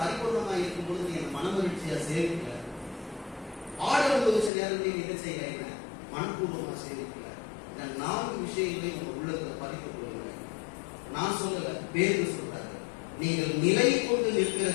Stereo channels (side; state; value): right; drops out; at 4.5 s